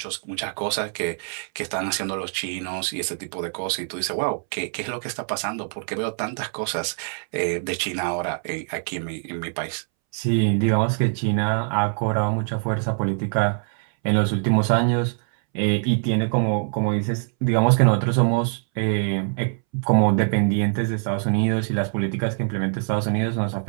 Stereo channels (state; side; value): silent; left; 63 dB below the other